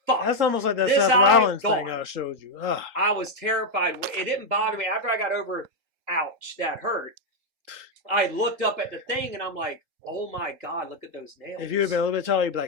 fucked. That's almost like that This Seth eye Rollins gone. thing I showed you. Ugh. I was terrified. It didn't bother me. After I got over, ouch, that hurt. I looked up at the thing and I'm like, oh my God, look at those nails. If you had been a little bit taller, you'd be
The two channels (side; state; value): left; late; 3.8 ms